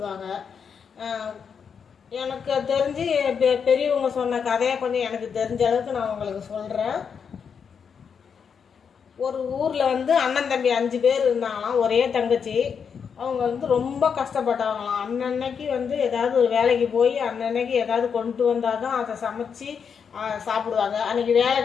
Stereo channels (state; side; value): quieter; right; 6.7 dB